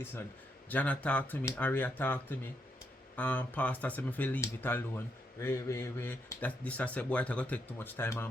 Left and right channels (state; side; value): normal; both; correlation 0.78